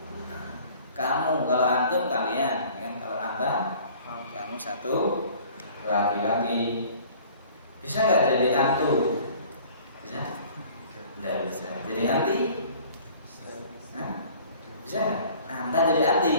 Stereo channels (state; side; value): inverted; both; correlation -0.50